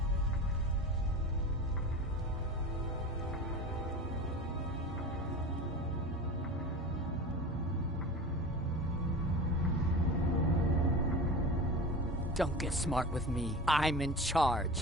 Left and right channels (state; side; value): normal; both; correlation 0.32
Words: Don't get smart with me. I'm in